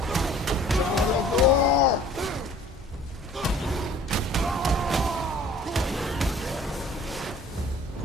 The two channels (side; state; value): both; normal; correlation 0.50